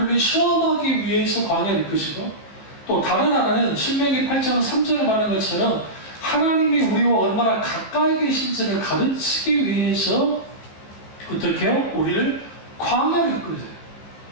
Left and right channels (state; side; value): late; right; 15 ms